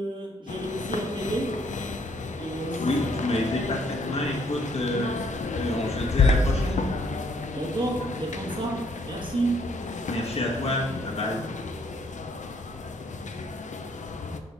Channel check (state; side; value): normal; both; correlation 0.68